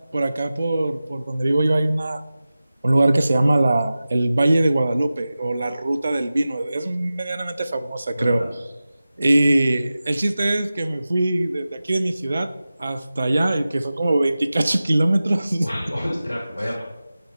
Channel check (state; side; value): inverted; both; correlation -0.95